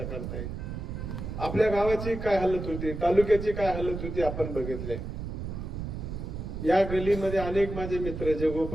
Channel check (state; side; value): noise; right; rumble, 6 dB below the sound